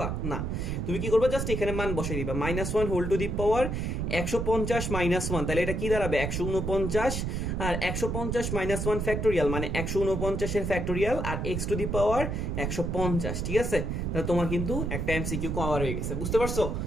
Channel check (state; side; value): noise; right; rumble, 2 dB below the sound